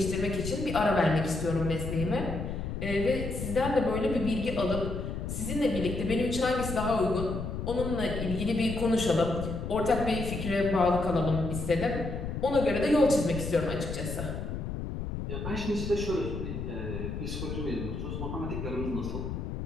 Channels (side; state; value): left; noise; rumble, 5 dB below the sound